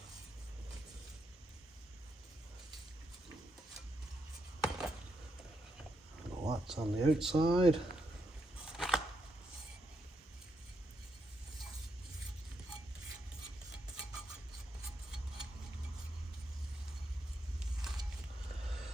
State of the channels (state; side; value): normal; both; correlation 0.81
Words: Lots on the outside.